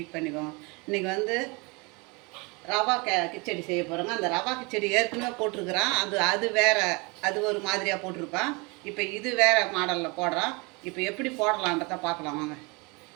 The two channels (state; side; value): quieter; left; 28.5 dB